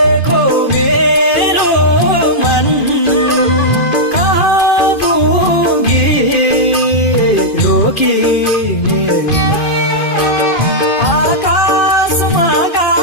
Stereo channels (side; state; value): right; late; 2.5 ms